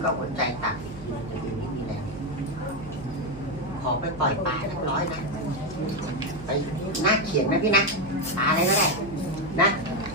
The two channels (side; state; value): right; noise; hum, 14 dB below the sound